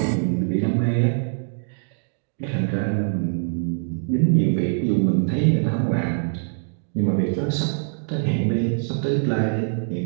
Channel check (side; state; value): left; silent; digital silence